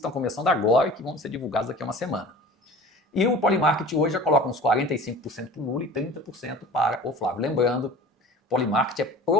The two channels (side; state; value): both; normal; correlation 0.41